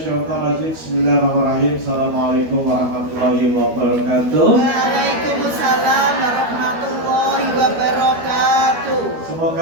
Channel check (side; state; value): left; late; 12 ms